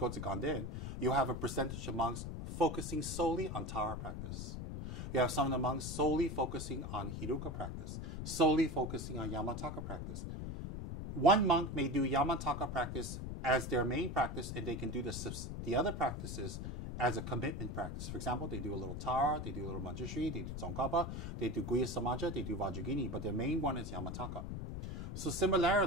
to Ganden, you have a percentage of monks focusing solely on Tara practice. You have some of the monks solely focusing on Hiruka practice, solely focusing on Yamataka practice. One monk may do Yamataka practice as their main practice, and they can do the other practices as a commitment practice. For example, they do a little Tara, they do a little Manjushri, they do Tsongkhapa, they do Guya Samaja, they do Vajragini, but their main one is Yamataka. So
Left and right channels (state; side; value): noise; left; rumble, 5 dB below the sound